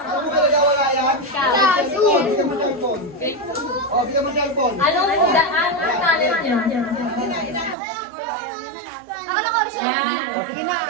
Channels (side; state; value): left; drops out; at 7.8 s